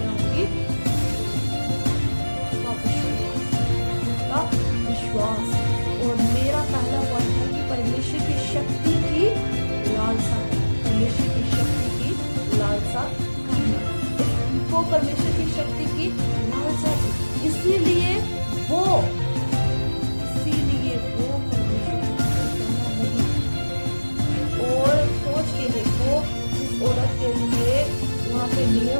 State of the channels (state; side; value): inverted; both; correlation -1.00